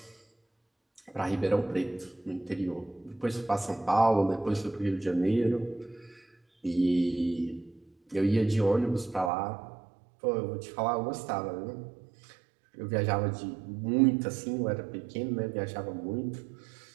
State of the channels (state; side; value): drops out; left; at 9.3 s